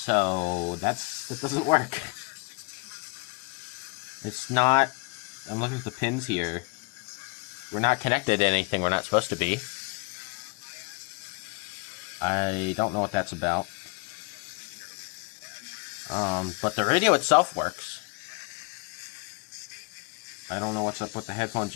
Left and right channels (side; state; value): right; quieter; 30.5 dB